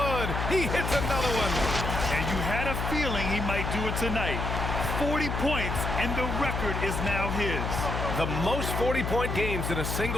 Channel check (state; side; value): noise; left; hum, 2 dB below the sound